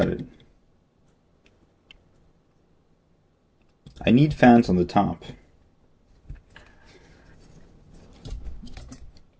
it. I need fans on the top.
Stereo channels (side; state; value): both; identical; correlation 1.00